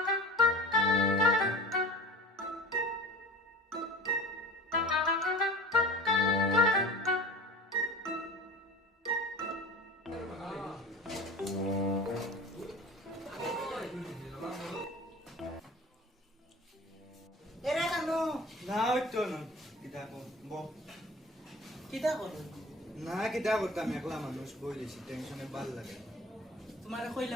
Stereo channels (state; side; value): normal; both; correlation 0.39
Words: এরা কেন না হইতো না কিতা বো কিতা করো না কিতা করতাম একলা মানুষ বই লেছি টেনশনে ভাল লাগে তোমারে